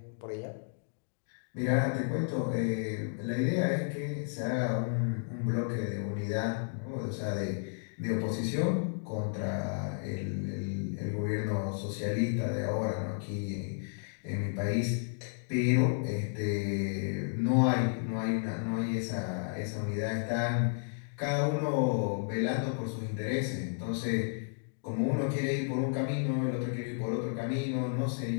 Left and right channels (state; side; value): silent; right; digital silence